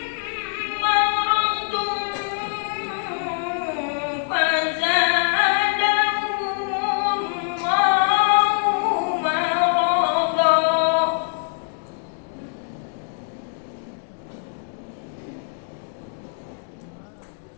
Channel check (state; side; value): silent; right; digital silence